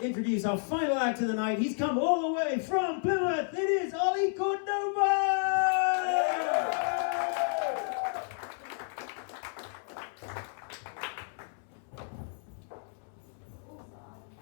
introduce our final act of the night. He's come all the way from Plymouth. It is Ollie Cordova!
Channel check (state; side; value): silent; right; 57 dB below the other